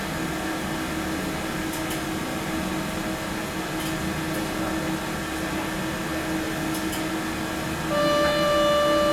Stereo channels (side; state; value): both; identical; correlation 1.00